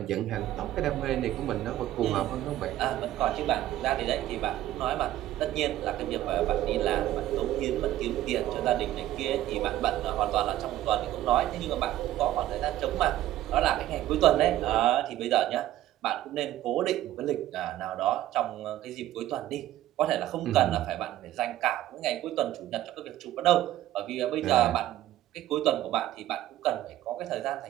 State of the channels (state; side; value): quieter; left; 13.9 dB